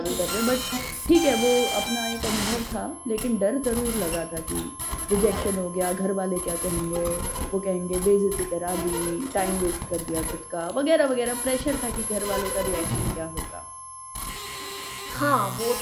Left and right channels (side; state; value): both; identical; correlation 1.00